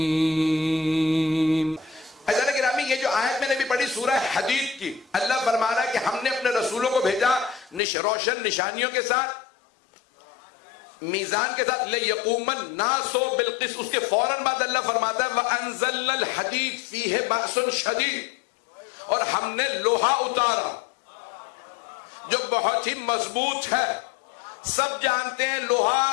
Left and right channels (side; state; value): right; drops out; at 7.8 s